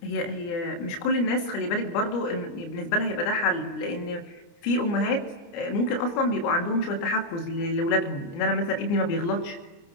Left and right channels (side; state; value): right; late; 29 ms